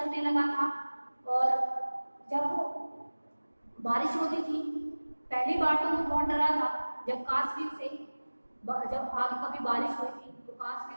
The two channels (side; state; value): both; inverted; correlation -1.00